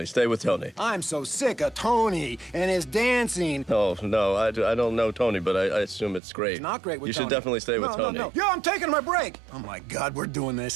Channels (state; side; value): drops out; left; at 6.2 s